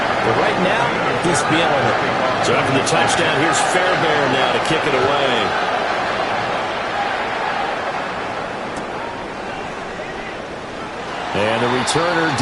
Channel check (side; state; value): both; identical; correlation 1.00